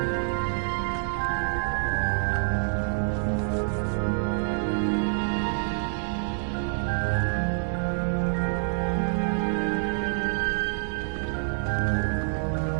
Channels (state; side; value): silent; left; 60 dB below the other